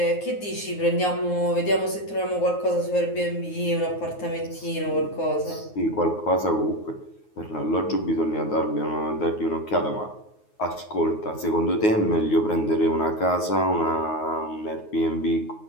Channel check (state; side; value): late; right; 9.5 ms